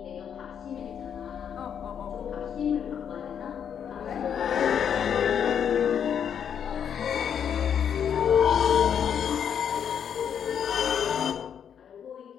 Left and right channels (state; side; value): quieter; right; 8.2 dB